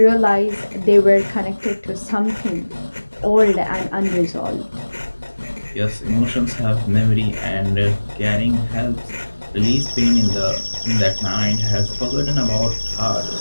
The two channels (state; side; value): inverted; both; correlation -1.00